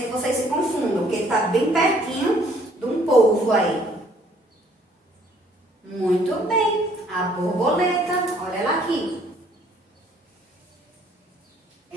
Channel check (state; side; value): normal; both; correlation 0.61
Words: que vocês se confundam, porque ele está bem pertinho de um polvo aí. Muito bem. A borboleta, olha ela aqui.